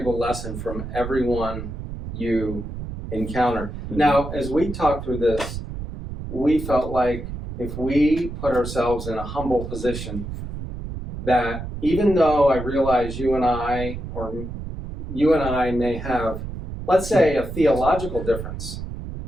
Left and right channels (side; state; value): right; noise; rumble, 8 dB below the sound